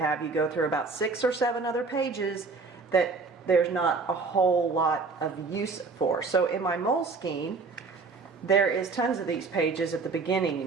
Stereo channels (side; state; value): left; quieter; 4.3 dB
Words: you go through about 6 or 7 other pages that there's not a whole lot of use for. So in my Moleskine, there is tons of these pages at the beginning, you